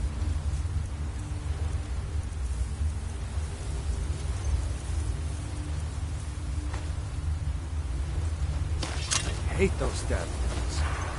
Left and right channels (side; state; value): both; identical; correlation 1.00